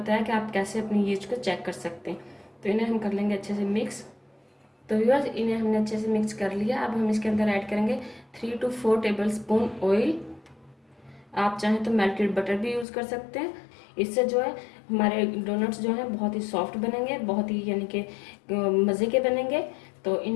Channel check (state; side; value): drops out; right; at 12.9 s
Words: कि आप कैसे अपनी ईस्ट को चेक कर सकते हैं। तो इन्हें हम कर लेंगे अच्छे से मिक्स। तो व्यूअर्स, इन्हें हमने अच्छे से मिक्स कर लिया। अब हम इसके अंदर ऐड करेंगे 3 to 4 टेबल स्पून ऑयल। आप चाहें तो मेल्टेड बटर भी यूज़ कर सकते हैं। इससे जो है हमारे डोनट्स जो हैं बहुत ही सॉफ्ट बनेंगे, बहुत ही यानी कि मज़े के बनेंगे। तो